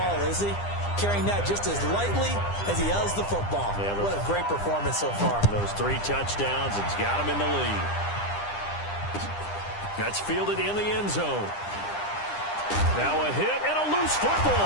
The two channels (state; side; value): late; right; 9.9 ms